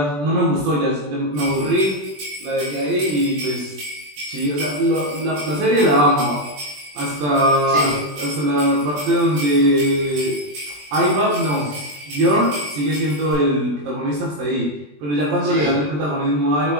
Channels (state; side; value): late; left; 20 ms